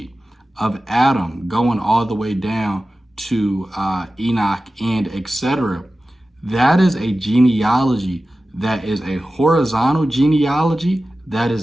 of Adam going all the way down to Enoch and etc., that is a genealogy that is a horizontal genealogy that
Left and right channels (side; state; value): both; normal; correlation 0.95